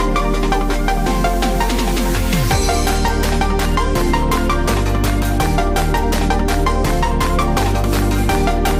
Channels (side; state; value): both; identical; correlation 1.00